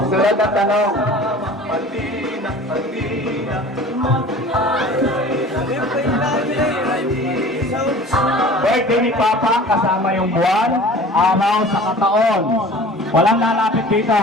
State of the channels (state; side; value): normal; both; correlation 0.43